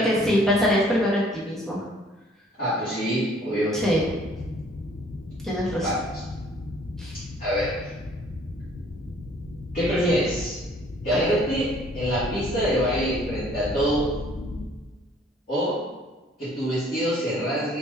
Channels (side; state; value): both; normal; correlation 0.58